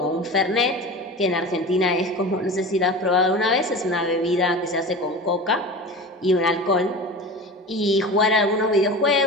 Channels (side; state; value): both; normal; correlation 0.32